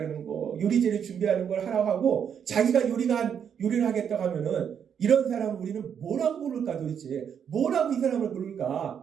거, 요리재료 준비하는 걸 하라고 하고 자기가 요리를 하겠다고 하면은 이런 사람을 우리는 뭐라고 부를까 도대체? 뭐라고 이 사람을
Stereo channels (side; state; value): left; quieter; 7.9 dB